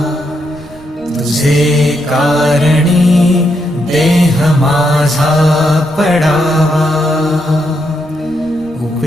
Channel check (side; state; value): right; noise; rumble, 23 dB below the sound